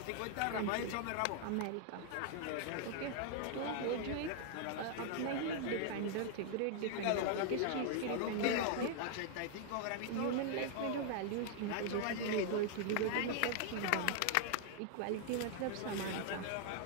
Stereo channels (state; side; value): different; both; correlation 0.00